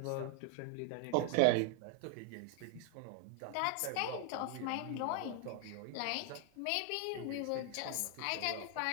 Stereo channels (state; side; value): different; both; correlation 0.00